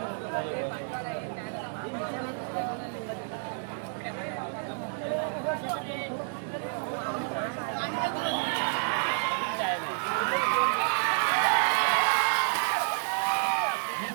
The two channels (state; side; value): silent; left; digital silence